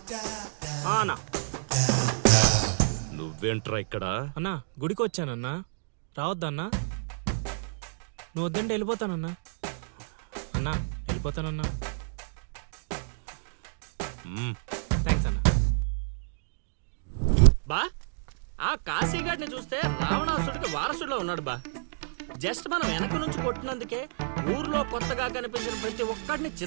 అన్నా నువ్వేంట్రా ఇక్కడ? అన్నా గుడికి వచ్చానన్నా, రావద్దన్నా. నువ్వు వద్దంటే వెళ్ళిపోతానన్నా. అన్నా వెళ్ళిపోతానన్నా. థ్యాంక్స్ అన్నా. బా ఆ కాశీగాడిని చూస్తే రావణాసుడికి వారసుడిలో ఉన్నాడు బా. జస్ట్ మనం వెనక నుంచి కొట్టినందుకే ఊర్లో కొత్తగా కనిపించిన ప్రతి ఒక్కడిని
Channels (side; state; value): left; silent; digital silence